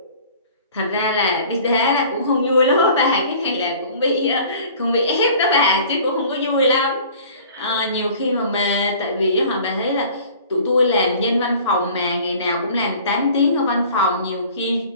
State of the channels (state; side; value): inverted; both; correlation -0.48